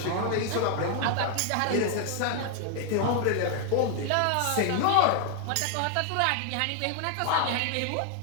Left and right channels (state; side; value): different; both; correlation 0.00